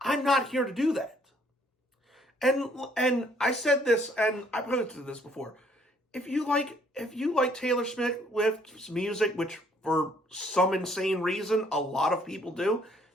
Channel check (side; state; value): both; normal; correlation 0.64